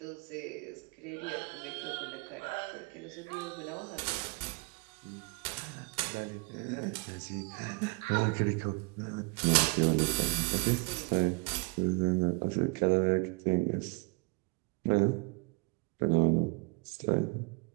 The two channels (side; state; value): left; quieter; 30.1 dB